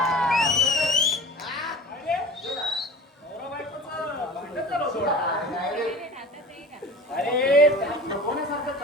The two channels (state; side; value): normal; both; correlation 0.38